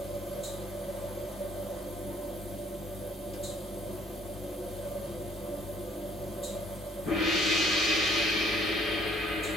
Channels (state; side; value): normal; both; correlation 0.62